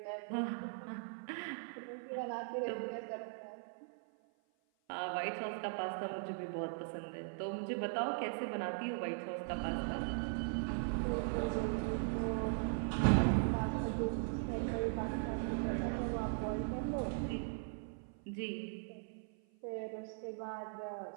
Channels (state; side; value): silent; left; 51 dB below the other